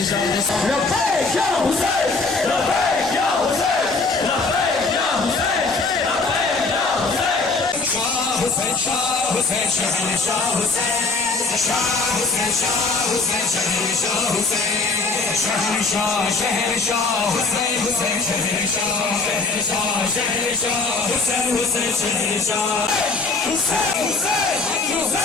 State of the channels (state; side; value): quieter; right; 3.9 dB